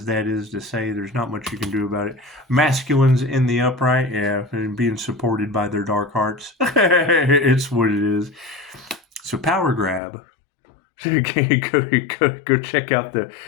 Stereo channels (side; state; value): right; drops out; at 10.0 s